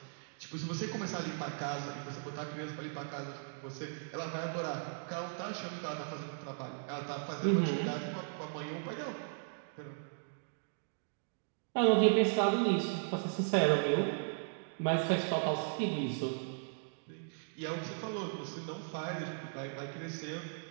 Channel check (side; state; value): left; silent; digital silence